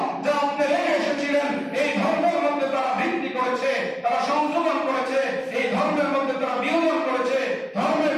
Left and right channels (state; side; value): identical; both; correlation 1.00